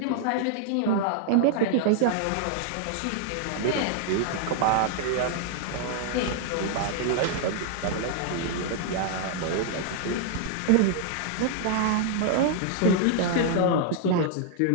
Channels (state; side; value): different; both; correlation 0.00